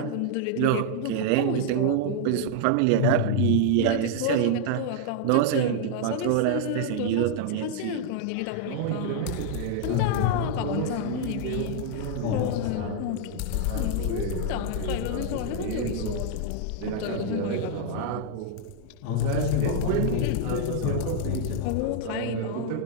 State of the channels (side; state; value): both; different; correlation -0.01